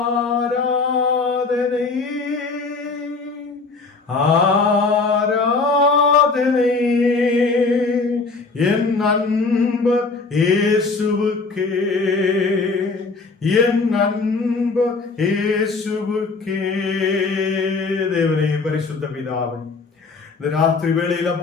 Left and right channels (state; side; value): quieter; right; 4.1 dB